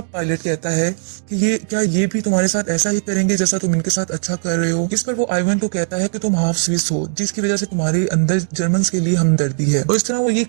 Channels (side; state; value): left; silent; digital silence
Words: पायलट कहता है कि ये भी तुम्हारे साथ ऐसा ही करेंगे जैसा तुम इनके साथ अच्छा कर रहे हो। इस पर वो आइवन को कहता है कि तुम हाफ स्विस हो, जिसकी वजह से तुम्हारे अंदर जर्मन्स के लिए हमदर्दी है। और इस तरह वो ये